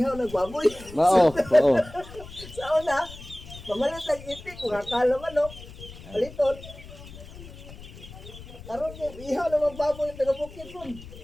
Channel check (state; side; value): noise; left; rumble, 16 dB below the sound